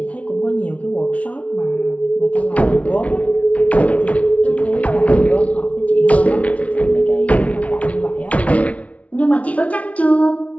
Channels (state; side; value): late; right; 0.066 ms